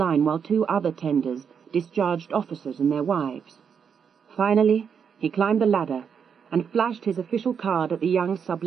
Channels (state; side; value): quieter; left; 7.0 dB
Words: while 2 other tenders discharged officers and their wives. Finally, he climbed the ladder and flashed his official card at the young